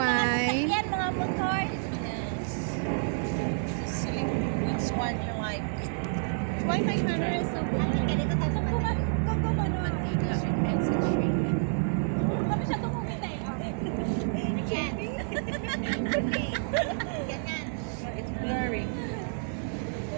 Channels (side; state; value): left; silent; digital silence